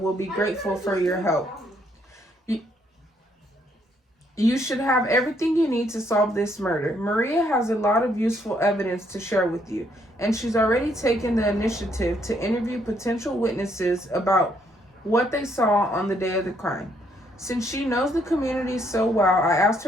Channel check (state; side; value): normal; both; correlation 0.70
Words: be grateful for your help. You should have everything you need to solve this murder. Maria has a lot of useful evidence to share with you, and she's already taken the initiative to interview potential witnesses about what they saw on the day of the crime. Since she knows the community so well, I asked